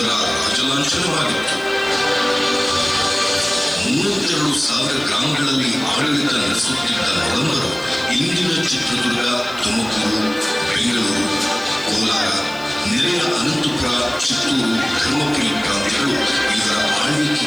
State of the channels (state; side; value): noise; left; hiss, 24 dB below the sound